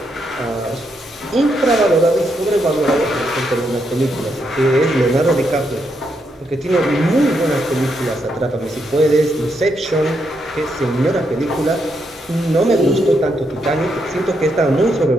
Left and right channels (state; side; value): normal; both; correlation 0.79